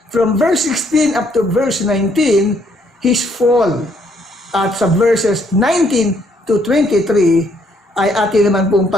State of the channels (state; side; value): normal; both; correlation 0.69